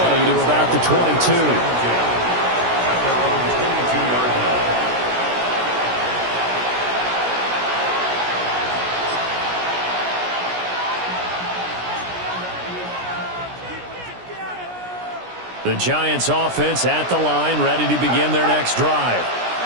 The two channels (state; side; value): late; left; 17 ms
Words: to about the 22. The Giants offense at the line, ready to begin their next drive.